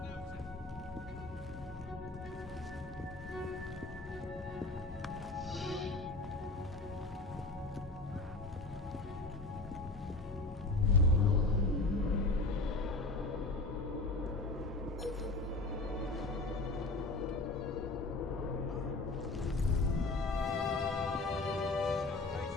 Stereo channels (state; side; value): quieter; right; 3.1 dB